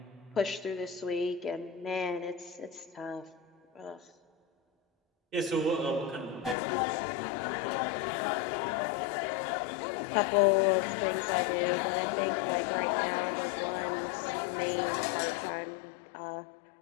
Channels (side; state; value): right; drops out; at 6.6 s